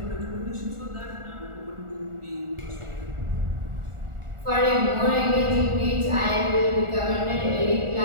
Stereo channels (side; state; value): left; late; 1.4 ms